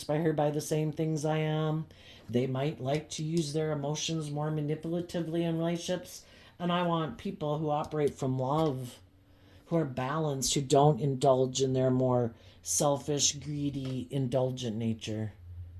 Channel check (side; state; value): both; identical; correlation 1.00